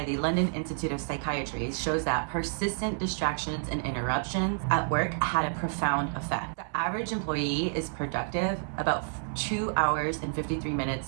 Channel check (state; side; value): silent; left; 58 dB below the other